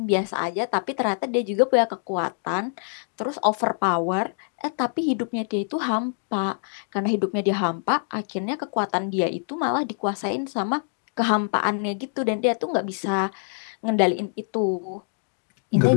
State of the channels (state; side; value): silent; right; digital silence